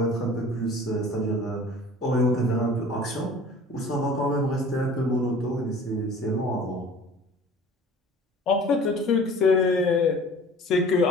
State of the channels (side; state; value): both; normal; correlation 0.45